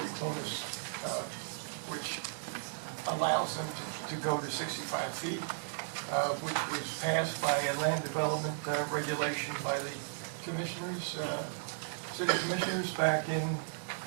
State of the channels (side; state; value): left; silent; digital silence